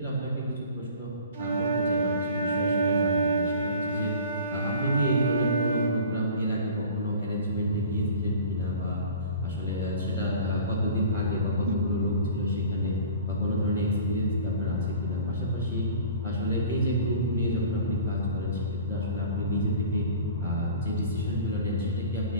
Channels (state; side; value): inverted; both; correlation -0.43